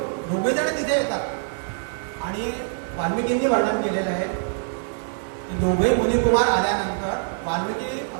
दोघे जण तिथे येतात. आणि वाल्मिकींनी वर्णन केलेलं आहे की दोघे मुनिकुमार आल्यानंतर वाल्मिकी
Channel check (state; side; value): silent; left; digital silence